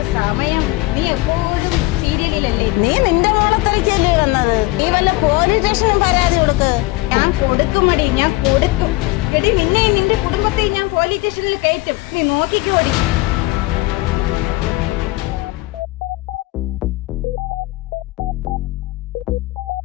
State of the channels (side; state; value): right; quieter; 20.2 dB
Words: സമയം? നീ എപ്പോഴും സീരിയലിലല്ലേ? നീ നിന്റെ മോളത്തലിക്കല്ലേ വന്നത്? നീ വല്ല പോലീസ് സ്റ്റേഷനും പരാതി കൊടുക്ക്. ഞാൻ കൊടുക്കുമടി, ഞാൻ കൊടുക്കും. എടി, നിന്നെയും നിന്റെ കുടുംബത്തെയും ഞാൻ പോലീസ് സ്റ്റേഷനിൽ കയറ്റും. നീ നോക്കിക്കോടി.